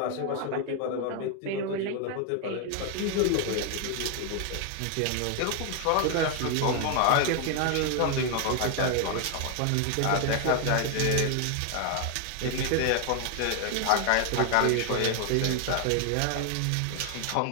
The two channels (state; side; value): different; both; correlation 0.00